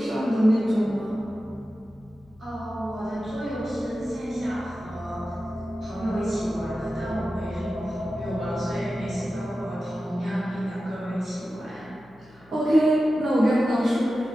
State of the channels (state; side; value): noise; left; hum, 28 dB below the sound